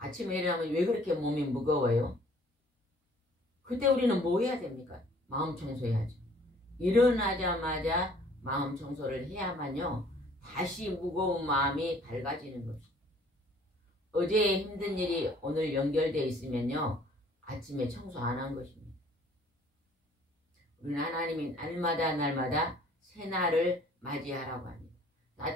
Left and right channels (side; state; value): both; normal; correlation 0.57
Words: 일어나면 왜 그렇게 몸이 무거워요? 그때 우리는 뭐 해야 됩니까? 마음 청소해야죠. 일어나자마자 마음 청소를 해야만요 다시 무거운 마음이 밝아지는 것입니다. 어제 힘든 일이 오늘 연결되어 있으면요 아침에 청소 안 한 것입니다. 우리는 하나님이 날마다 새날을 맞이하라고 합니다.